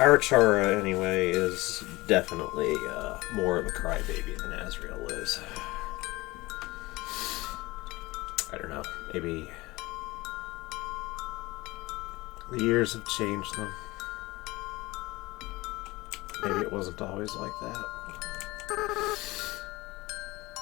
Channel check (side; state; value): right; quieter; 20.9 dB